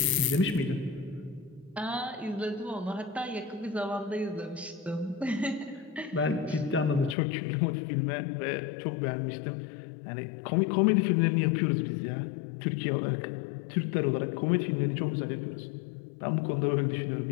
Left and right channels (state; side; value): drops out; right; at 7.2 s